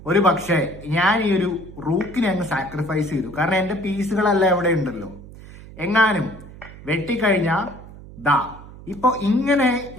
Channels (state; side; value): noise; right; hum, 17 dB below the sound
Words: ഒരു പക്ഷേ ഞാൻ ഈ ഒരു റൂക്കിനെ അങ്ങ് സാക്രിഫൈസ് ചെയ്തു, കാരണം എന്റെ പീസുകളെല്ലാം ഇവിടെ ഉണ്ടല്ലോ. എങ്ങാനും വെട്ടിക്കഴിഞ്ഞാ ദാ ഇപ്പൊ ഇങ്ങനെ